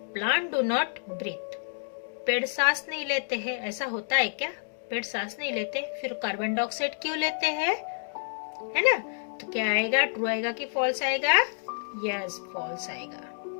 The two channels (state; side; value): silent; right; digital silence